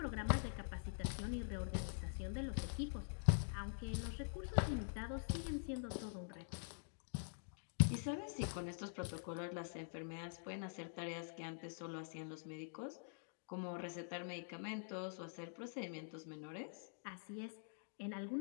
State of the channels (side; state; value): right; silent; digital silence